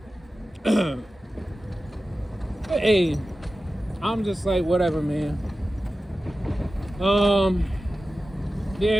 Hey, I'm just like, whatever, man.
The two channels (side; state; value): both; normal; correlation 0.94